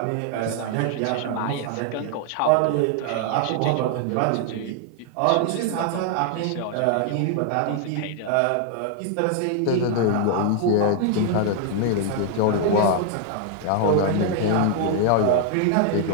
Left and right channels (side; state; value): both; different; correlation 0.00